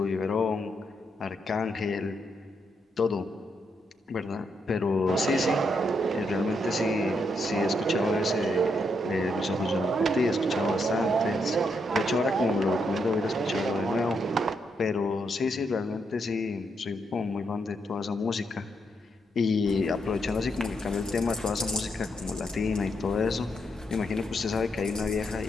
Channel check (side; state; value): both; normal; correlation 0.79